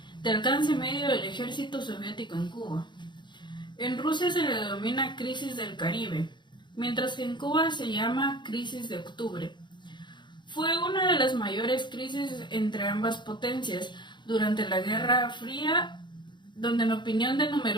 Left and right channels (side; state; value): right; late; 0.22 ms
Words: de alcance medio del ejército soviético en Cuba. En Rusia se le denomina crisis del Caribe, mientras que en Cuba se llama crisis de octubre. Fue una de las mayores crisis entre ambas potencias durante la Guerra Fría, donde en opinión de